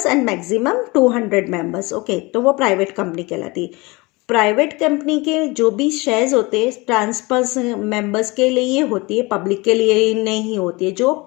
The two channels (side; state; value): right; quieter; 24.5 dB